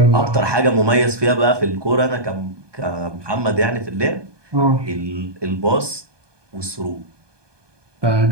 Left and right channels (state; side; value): late; left; 1.2 ms